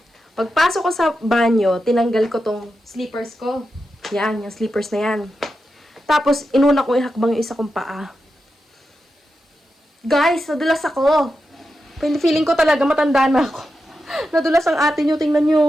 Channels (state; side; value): normal; both; correlation 0.89